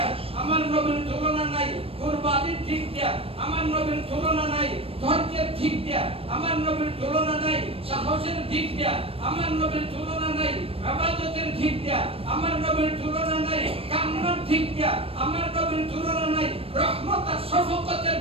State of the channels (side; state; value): left; late; 0.28 ms